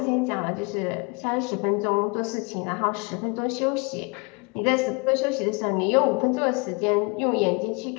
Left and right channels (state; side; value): quieter; right; 30.6 dB